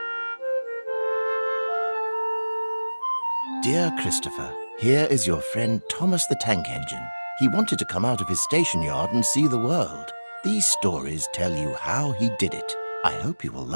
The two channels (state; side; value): inverted; both; correlation -1.00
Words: Dear Christopher, here is your friend Thomas the Tank Engine. He wanted to come out of his station yard and see the world. These stories tell you how he did it. I hope you will